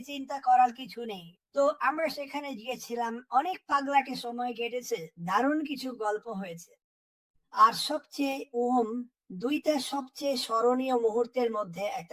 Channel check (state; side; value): identical; both; correlation 1.00